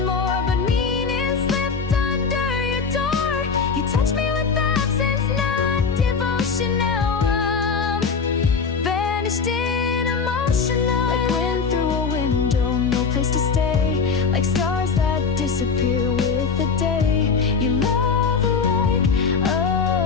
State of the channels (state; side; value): quieter; right; 5.3 dB